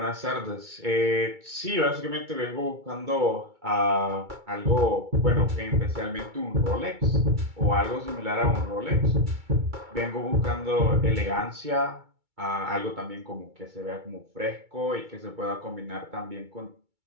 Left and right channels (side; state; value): left; late; 2.2 ms